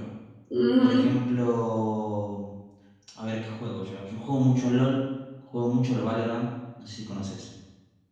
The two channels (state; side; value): identical; both; correlation 1.00